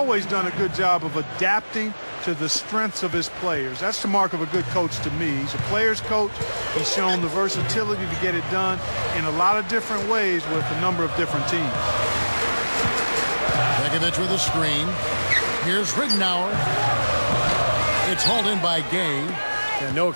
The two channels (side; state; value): both; inverted; correlation -1.00